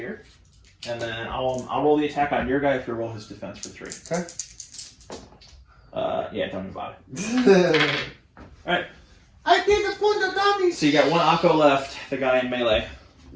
And then I'll roll the attack on your guy if you roll his defense for 3. Okay. Yeah, don't even bother. Alright. I did the point of dummies. So you got 1 Akko left, the guy in melee.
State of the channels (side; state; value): both; identical; correlation 1.00